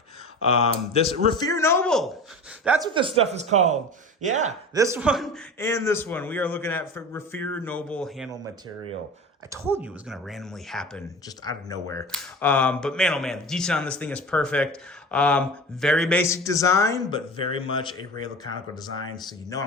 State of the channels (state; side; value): normal; both; correlation 0.34